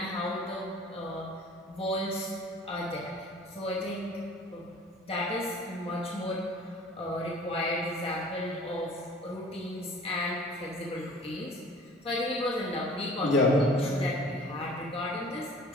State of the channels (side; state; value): both; normal; correlation 0.48